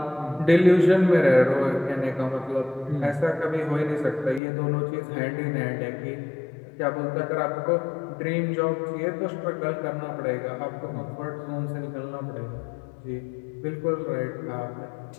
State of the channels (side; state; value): right; drops out; at 4.4 s